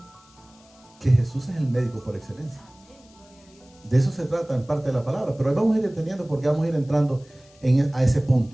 que Jesús es el médico por excelencia. De eso se trata en parte de la palabra. Pero ahí vamos a ir entendiendo, porque vamos a ir entrando a ese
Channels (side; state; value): left; noise; hiss, 29 dB below the sound